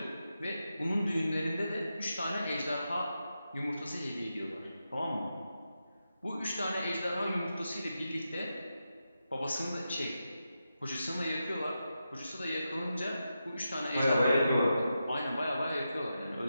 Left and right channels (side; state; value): both; inverted; correlation -0.89